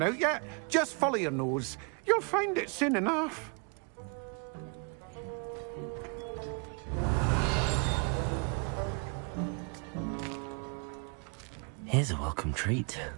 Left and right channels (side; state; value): left; quieter; 36.7 dB